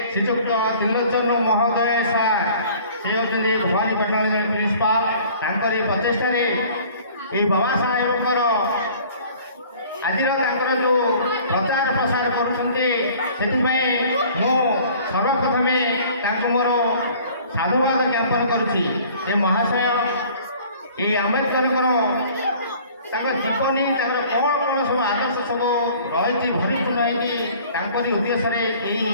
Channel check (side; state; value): both; inverted; correlation -0.51